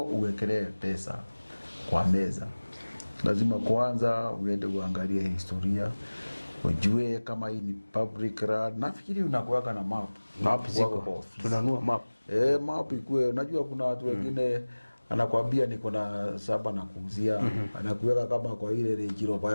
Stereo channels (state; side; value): inverted; both; correlation -1.00